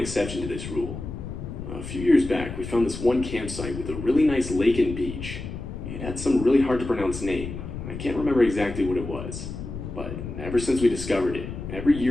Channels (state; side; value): noise; left; rumble, 8 dB below the sound